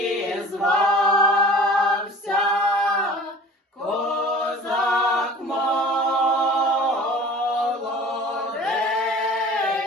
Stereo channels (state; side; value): normal; both; correlation 0.44